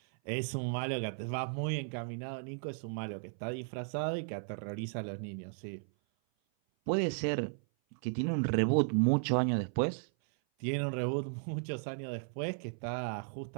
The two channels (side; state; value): left; silent; 54 dB below the other